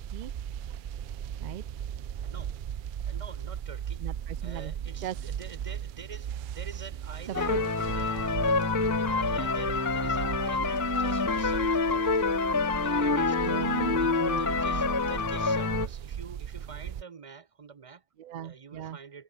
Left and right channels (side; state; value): left; late; 2.3 ms